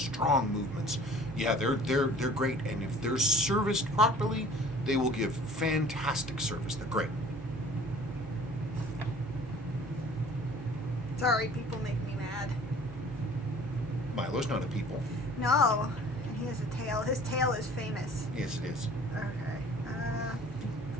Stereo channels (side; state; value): both; normal; correlation 0.49